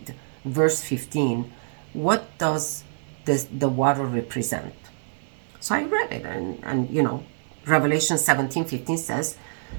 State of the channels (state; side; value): silent; left; 61 dB below the other